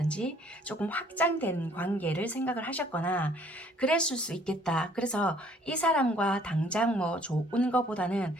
조금 확장된 관계를 생각을 하셨거나 그랬을 수 있겠다. 그래서 이 사람과 당장 뭐 좋은 거보다는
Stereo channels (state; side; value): normal; both; correlation 0.59